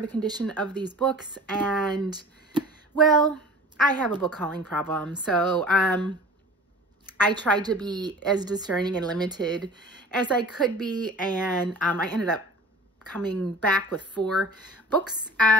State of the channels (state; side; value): normal; both; correlation 0.41